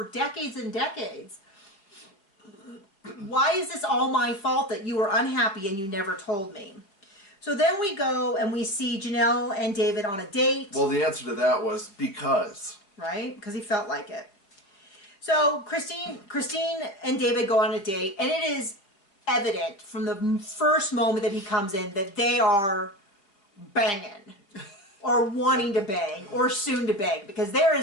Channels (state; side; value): late; right; 4.9 ms